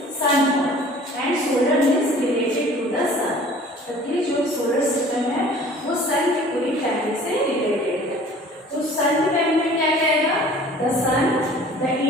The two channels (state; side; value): normal; both; correlation 0.48